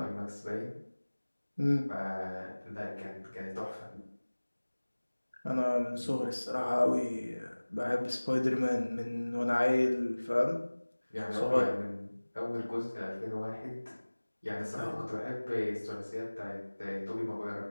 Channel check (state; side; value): inverted; both; correlation -1.00